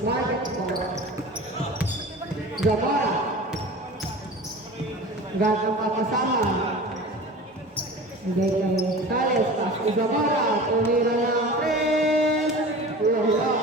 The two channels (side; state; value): both; normal; correlation 0.37